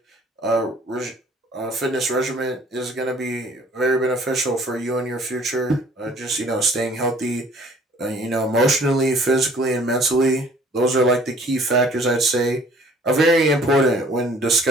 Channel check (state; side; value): normal; both; correlation 0.55